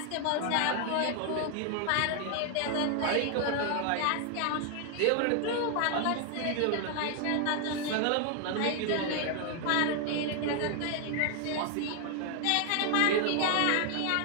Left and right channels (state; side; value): different; both; correlation 0.00